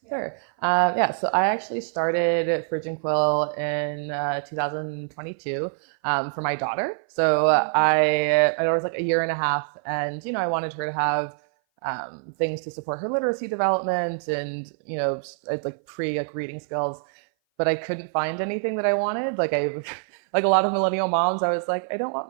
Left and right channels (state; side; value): silent; left; 58 dB below the other